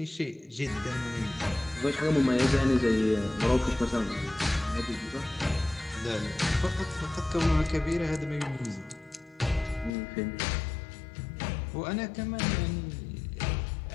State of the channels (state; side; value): drops out; right; at 9.9 s